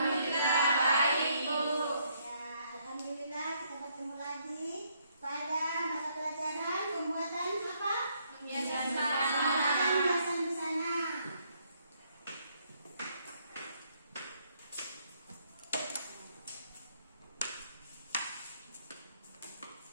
baik, Bu. Ya, alhamdulillah kita bertemu lagi pada mata pelajaran pembuatan apa? Pembiasan Pembuatan busana.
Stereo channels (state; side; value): inverted; both; correlation -0.71